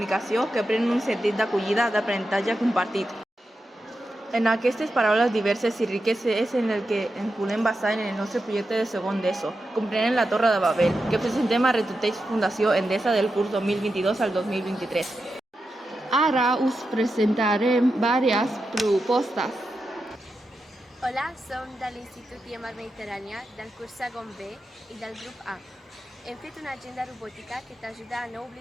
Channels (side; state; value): both; normal; correlation 0.89